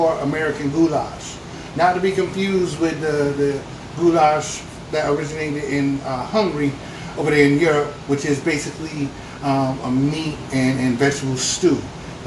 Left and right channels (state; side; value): identical; both; correlation 1.00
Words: American goulash. Not to be confused with the goulash that originated in Hungary over there in Europe, which is basically a meat and vegetable stew.